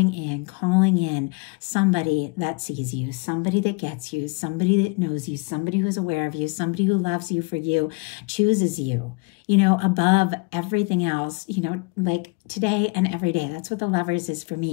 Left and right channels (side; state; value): right; quieter; 29.3 dB